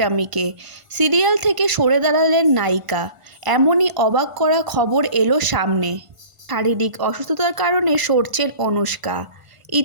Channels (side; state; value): left; late; 1.5 ms